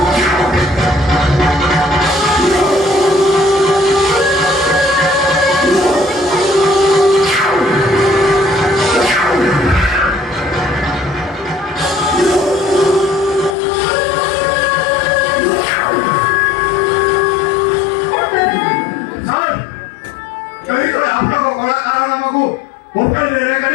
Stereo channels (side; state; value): right; drops out; at 13.6 s